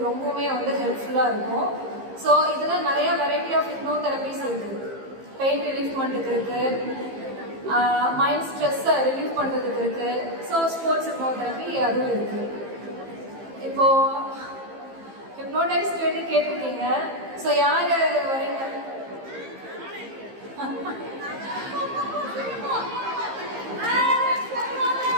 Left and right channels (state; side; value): late; left; 15 ms